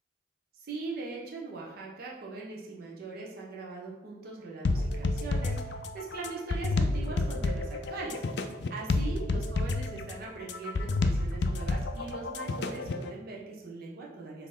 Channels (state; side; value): normal; both; correlation 0.74